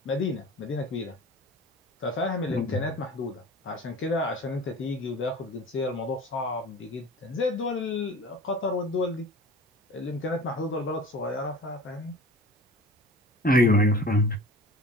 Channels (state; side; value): normal; both; correlation 0.40